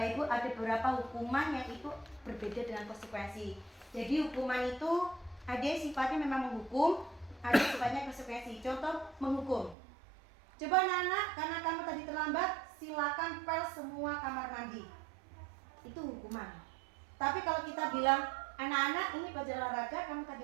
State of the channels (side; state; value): left; drops out; at 9.8 s